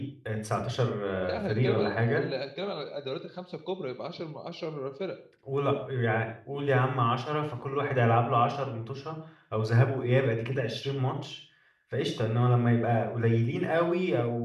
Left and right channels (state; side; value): identical; both; correlation 1.00